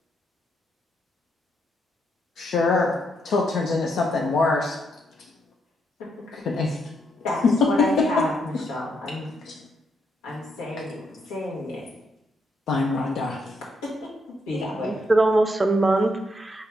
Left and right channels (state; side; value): normal; both; correlation 0.77